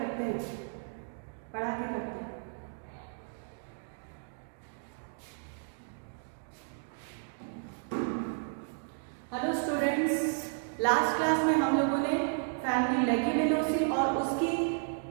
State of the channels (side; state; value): left; silent; digital silence